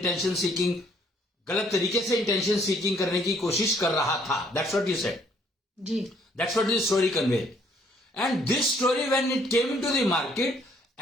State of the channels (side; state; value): both; normal; correlation 0.64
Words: गलत तरीके से इंटेंशन सीकिंग करने की कोशिश कर रहा था. That's what you said ji. That's what this story conveyed. And this story when it came into the market,